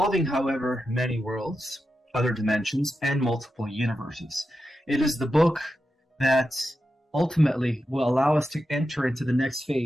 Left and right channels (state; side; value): normal; both; correlation 0.89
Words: however, many worlds, other dimensions, and multiple universes. It is the book that ultimately will allow us to enter into the next